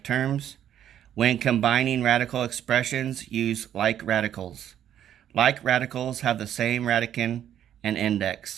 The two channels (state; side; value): quieter; left; 10.4 dB